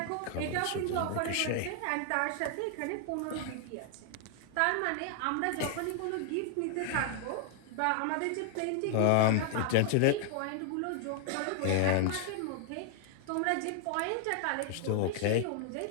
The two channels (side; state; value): both; different; correlation 0.00